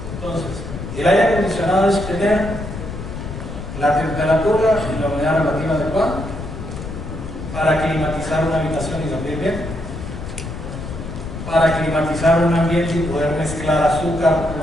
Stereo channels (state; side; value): noise; left; rumble, 8 dB below the sound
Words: Entonces, el aire acondicionado es tener la temperatura y la humedad relativa adecuada para climatizar una habitación y dormir bien, para climatizar un ambiente y poder mezclar azúcar